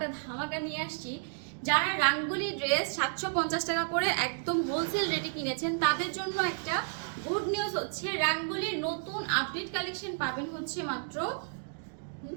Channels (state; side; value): silent; left; digital silence